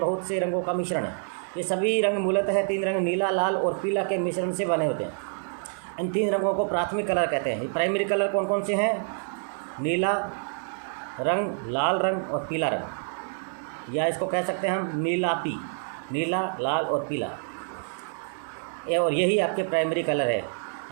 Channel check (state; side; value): silent; left; 60 dB below the other